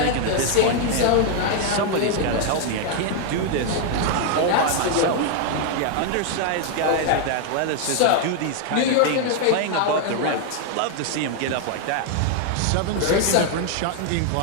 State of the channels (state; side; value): different; both; correlation 0.00